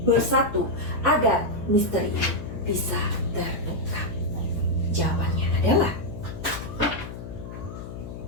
bersatu agar misteri ini bisa terungkap. Jawabannya adalah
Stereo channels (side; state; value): left; noise; hum, 10 dB below the sound